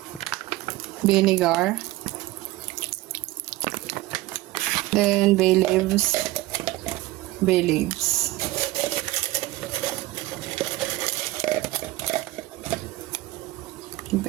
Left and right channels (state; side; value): quieter; left; 18.3 dB